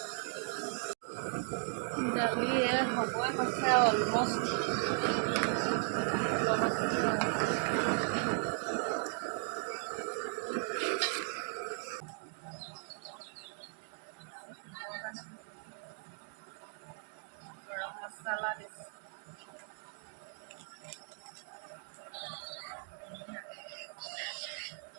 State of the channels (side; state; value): left; silent; 53 dB below the other